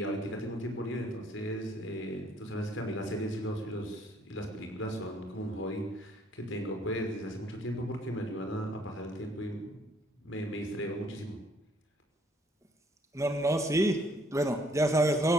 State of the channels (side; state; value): both; normal; correlation 0.64